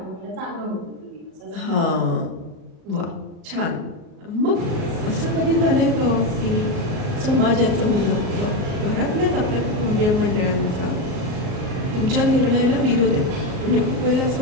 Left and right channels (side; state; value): left; late; 37 ms